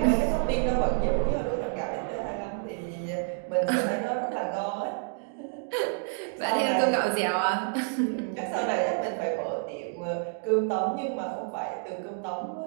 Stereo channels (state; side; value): silent; left; 59 dB below the other